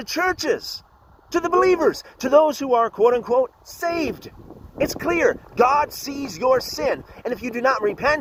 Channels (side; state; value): both; identical; correlation 1.00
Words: churches, to the believers, to those who are quote-unquote saved. It's clear. God sees your sin. And if you do not